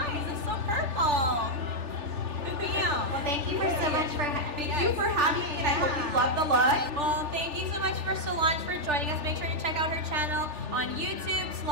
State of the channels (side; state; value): left; late; 3.4 ms